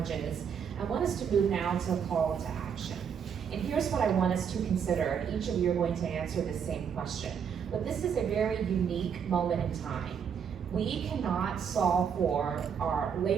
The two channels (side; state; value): left; quieter; 7.3 dB